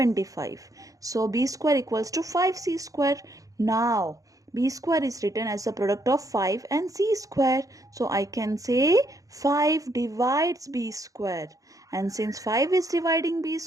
So b square equals to 5c square. Now b square is written as the product of 5 and c square. So I can say 5 divides b square. And since 5 is dividing b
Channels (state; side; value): late; left; 0.17 ms